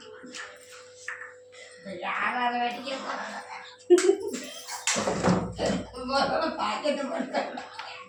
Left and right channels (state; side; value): identical; both; correlation 1.00